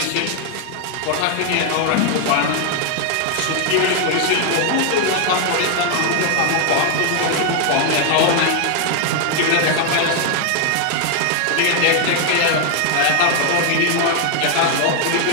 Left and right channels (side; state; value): both; different; correlation 0.00